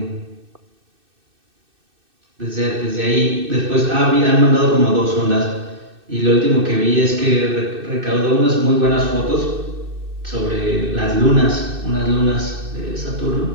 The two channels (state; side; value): late; left; 2.6 ms